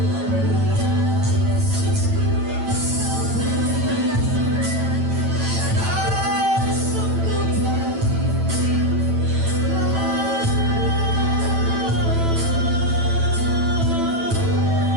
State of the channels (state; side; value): late; left; 9.0 ms